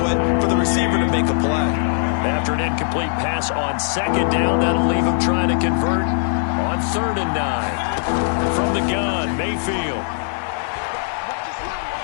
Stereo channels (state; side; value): silent; right; 56 dB below the other